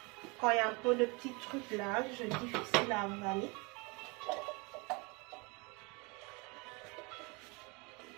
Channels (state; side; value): quieter; left; 28.7 dB